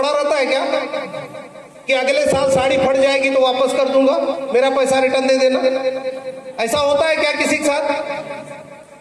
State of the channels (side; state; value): both; identical; correlation 1.00